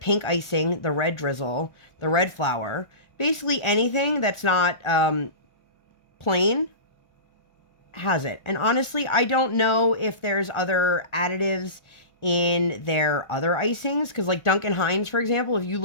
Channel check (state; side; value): late; right; 1.4 ms